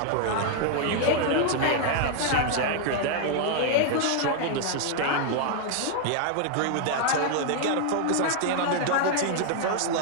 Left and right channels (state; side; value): different; both; correlation 0.00